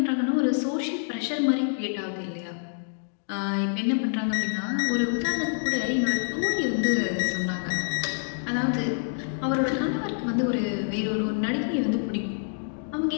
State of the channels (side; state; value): right; silent; digital silence